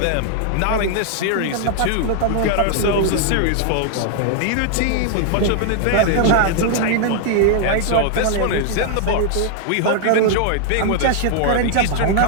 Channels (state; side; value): different; both; correlation 0.00